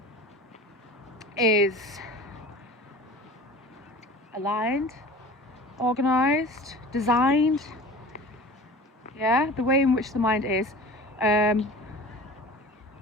is aligned, organized, designed, yeah, the way in which the mind is, and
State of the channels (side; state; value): both; normal; correlation 0.39